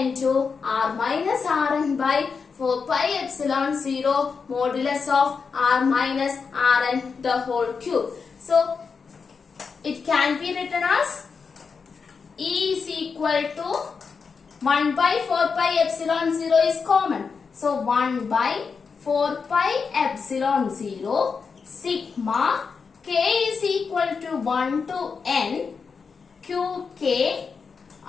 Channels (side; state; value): right; quieter; 5.4 dB